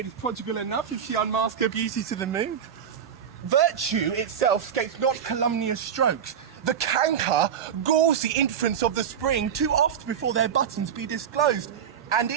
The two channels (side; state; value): left; quieter; 8.3 dB